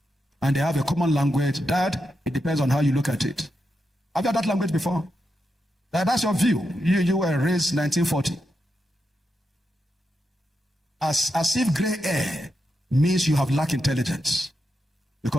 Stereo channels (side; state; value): both; normal; correlation 0.86